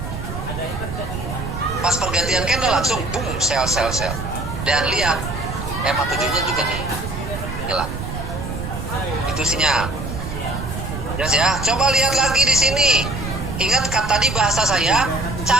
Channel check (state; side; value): noise; right; rumble, 6 dB below the sound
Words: Pas pergantian candle langsung boom sell. Dan lihat EMA 7-nya juga nih hilang. Itu sinyal. Jelas ya. Coba lihat lagi di sini. Ingat tadi bahasa saya,